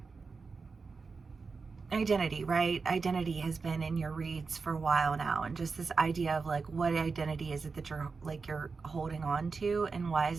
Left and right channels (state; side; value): quieter; left; 4.6 dB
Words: identity, right? Identity has been in your reads for a while now, and just this idea of like, what identity is it that you're holding on to, and why